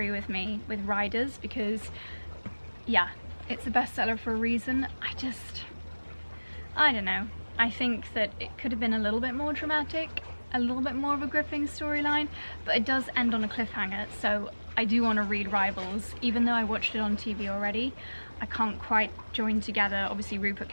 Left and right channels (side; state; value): both; inverted; correlation -1.00